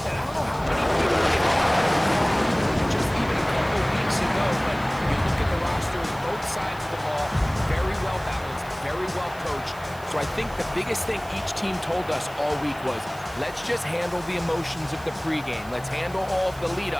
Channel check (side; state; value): right; noise; hiss, 22 dB below the sound